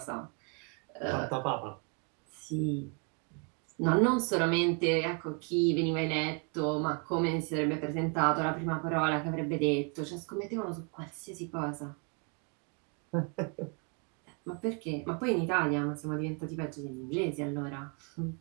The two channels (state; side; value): quieter; left; 37.3 dB